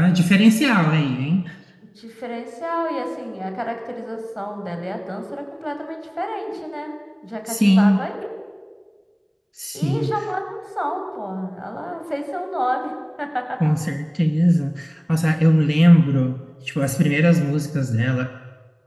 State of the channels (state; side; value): identical; both; correlation 1.00